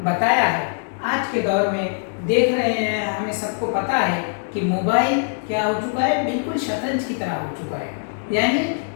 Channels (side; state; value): right; silent; digital silence